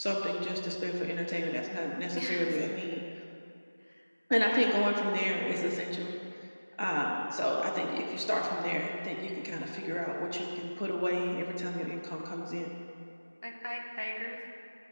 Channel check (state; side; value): inverted; both; correlation -1.00